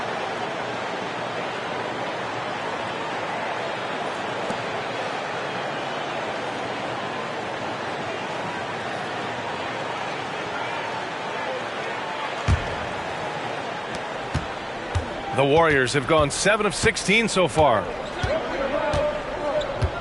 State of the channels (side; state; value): both; identical; correlation 1.00